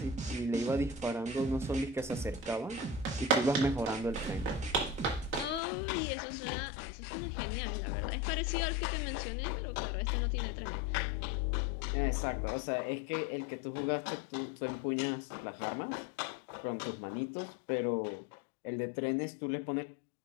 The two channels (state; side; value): drops out; right; at 5.6 s